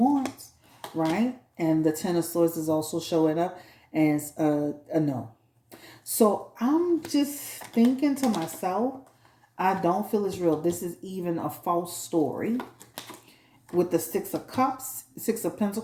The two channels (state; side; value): identical; both; correlation 1.00